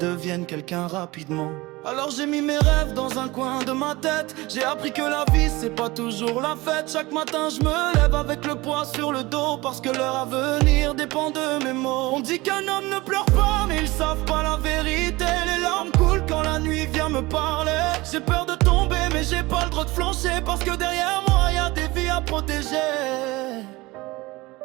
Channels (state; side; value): quieter; left; 21.3 dB